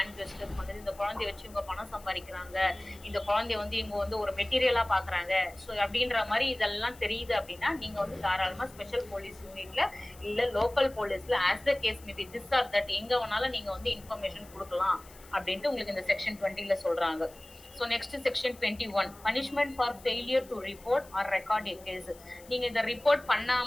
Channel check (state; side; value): noise; left; hiss, 22 dB below the sound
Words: ஜெஸ்டர்ஸ் பண்ணுது, இந்த குழந்தைய வச்சு இவங்க பணம் சம்பாதிக்கிறாங்க, இந்த குழந்தைய வந்து இவங்க வந்து ஒரு மெட்டீரியலா பாக்குறாங்க, ஸோ அப்படின்ற மாதிரி இதெல்லாம் தெரியுது அப்படின்னா நீங்க வந்து தாராளமா ஸ்பெஷல் போலீஸ் யூனிட்ல இல்ல லோக்கல் போலீஸ்ல as the case may be this or that எங்க வேணாலும் நீங்க வந்து இன்ஃபர்மேஷன் கொடுக்கலாம் அப்படின்ட்டு உங்களுக்கு இந்த செக்ஷன் 20ல சொல்றாங்க. So next section 21, punishment for failure to report or record a case. நீங்க இந்த ரிப்போர்ட்